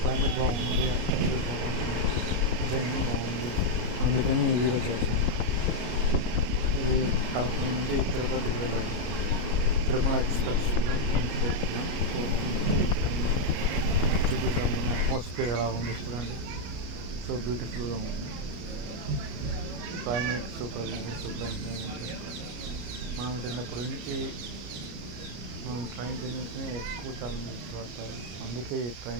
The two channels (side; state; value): left; late; 33 ms